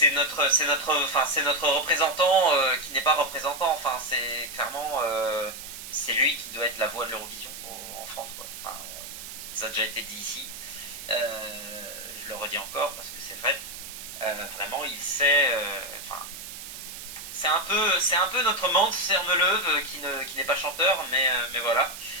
notre représentant qui n'est pas représentant. Enfin, c'est clairement, c'est lui qui doit être la voix de l'Eurovision en France, quoi. Enfin, ça a déjà été dit ici. Je le redis encore parce que c'est vrai. Vraiment, il sait. C'est un peu notre Mans Sermeleuve qui n'est pas chanteur, mais voilà,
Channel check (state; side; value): noise; right; hiss, 11 dB below the sound